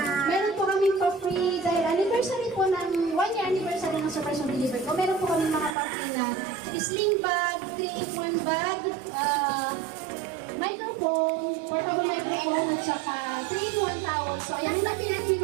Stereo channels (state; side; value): drops out; left; at 5.8 s